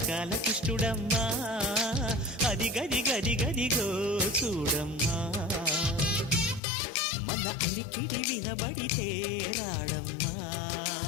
కృష్ణుడమ్మా అది గది గది గదిగో చూడమ్మా మన అలికిడి వినబడితే రాడమ్మా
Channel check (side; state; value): right; drops out; at 6.6 s